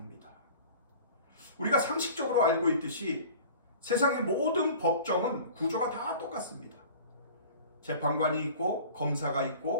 우리가 상식적으로 알고 있듯이 세상의 모든 법정은 구조가 다 똑같습니다. 재판관이 있고 검사가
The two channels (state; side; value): inverted; both; correlation -0.43